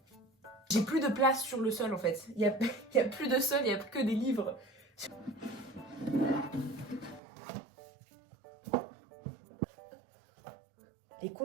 J'ai plus de place sur le sol, en fait. Il y a plus de sol, il y a que des livres. Les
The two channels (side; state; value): left; drops out; at 7.2 s